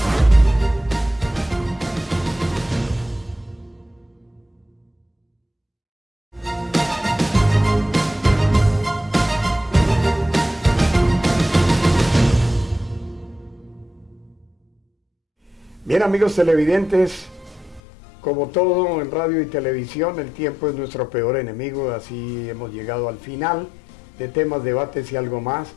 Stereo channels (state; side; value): drops out; right; at 17.8 s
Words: Bien, amigos televidentes, como todo en radio y televisión, el tiempo es nuestro peor enemigo, así hemos llegado al final de temas, debates y algo más,